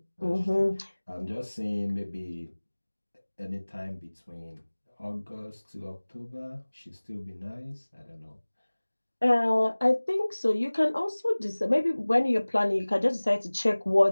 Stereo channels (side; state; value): both; inverted; correlation -1.00